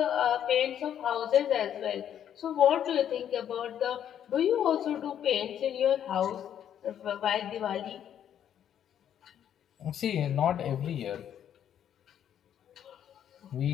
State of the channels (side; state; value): right; quieter; 9.8 dB